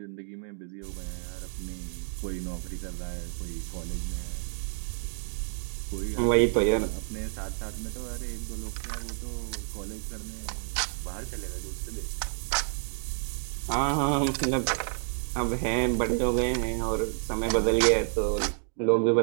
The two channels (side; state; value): left; silent; 58 dB below the other